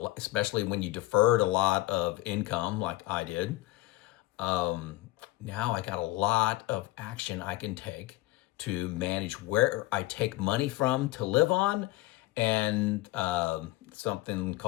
especially when you deferred a lot of income like I did. Now I got a lot of action I can take to manage where I take money from to live on, and something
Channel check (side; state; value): right; quieter; 18.3 dB